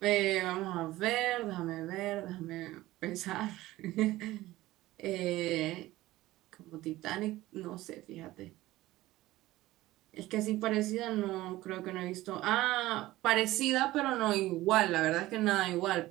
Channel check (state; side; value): quieter; left; 17.1 dB